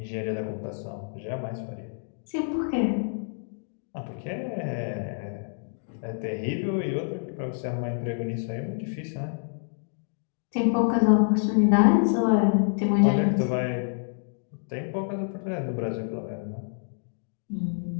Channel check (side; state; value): right; silent; digital silence